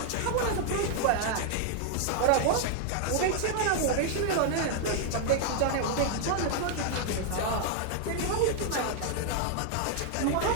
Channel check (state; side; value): different; both; correlation 0.00